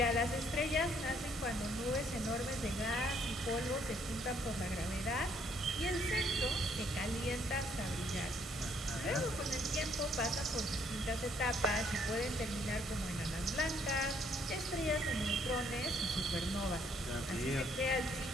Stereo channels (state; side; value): normal; both; correlation 0.66